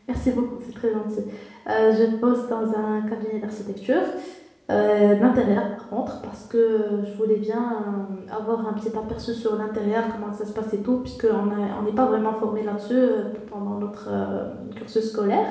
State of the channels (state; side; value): identical; both; correlation 1.00